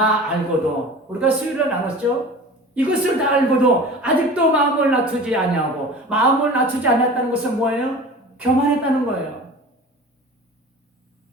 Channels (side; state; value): both; normal; correlation 0.38